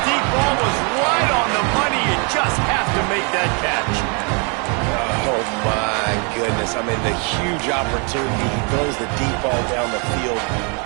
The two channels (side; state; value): left; quieter; 34.5 dB